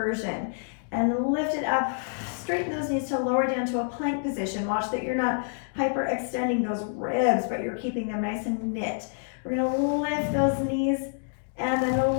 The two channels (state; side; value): silent; right; digital silence